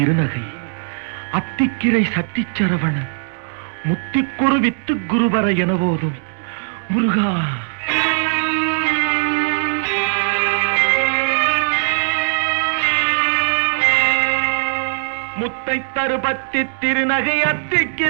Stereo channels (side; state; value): left; silent; 66 dB below the other